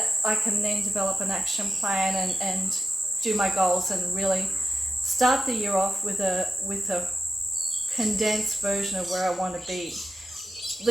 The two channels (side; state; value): both; normal; correlation 0.91